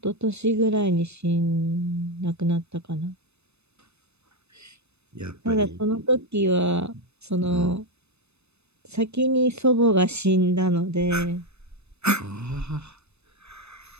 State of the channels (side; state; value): left; late; 0.81 ms